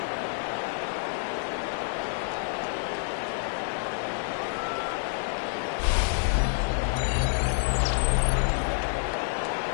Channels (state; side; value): silent; right; digital silence